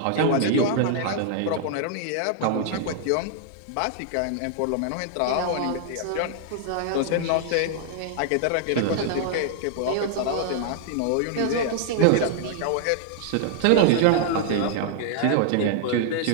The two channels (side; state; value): both; different; correlation 0.00